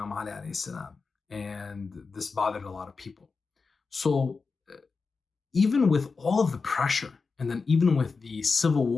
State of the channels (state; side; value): quieter; right; 4.6 dB